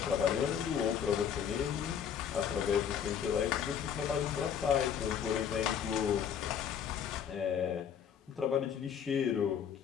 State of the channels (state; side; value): quieter; right; 8.3 dB